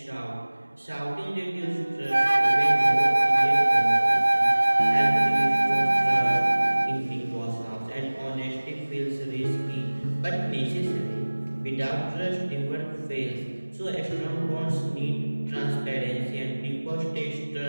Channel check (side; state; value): both; inverted; correlation -1.00